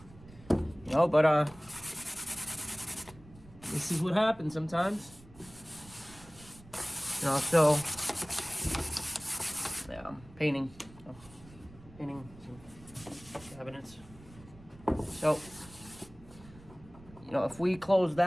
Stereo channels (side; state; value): right; noise; rumble, 21 dB below the sound